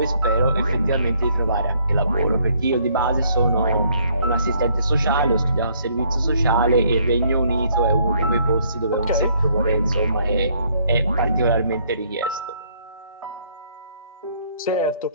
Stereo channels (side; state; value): both; inverted; correlation -0.66